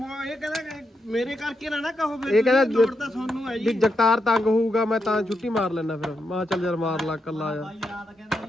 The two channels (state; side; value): normal; both; correlation 0.84